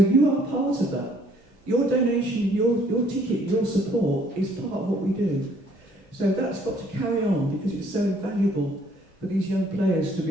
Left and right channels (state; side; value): normal; both; correlation 0.62